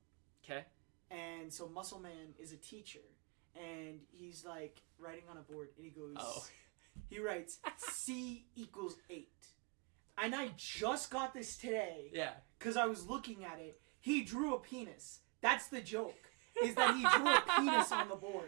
Okay. And so Muscle Man is a teacher. And he's like writing on a board and he goes he writes C equals 8. And I just got this today. Yeah. Because I was looking at it. He drew a penis. That's the joke. Is that he drew a penis on the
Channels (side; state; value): left; quieter; 31.4 dB